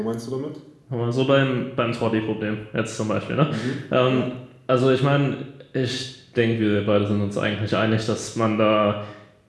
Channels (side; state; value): both; identical; correlation 1.00